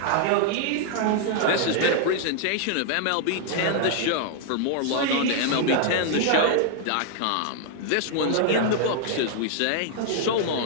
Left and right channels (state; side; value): different; both; correlation 0.00